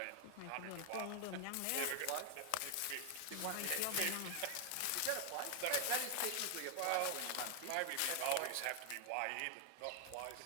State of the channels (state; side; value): different; both; correlation 0.00